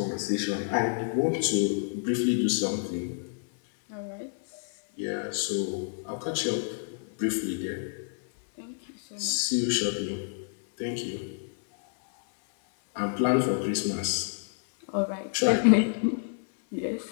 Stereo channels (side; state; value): right; silent; 59 dB below the other